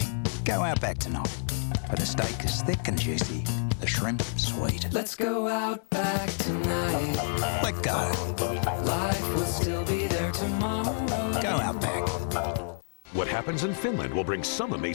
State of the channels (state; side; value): silent; right; digital silence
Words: Go Outback tonight. For the steak is thick and juicy, the shrimp sweet. Let's go Outback tonight. Let go. Life will still be there tomorrow. Go Outback. What happens in Finland will bring some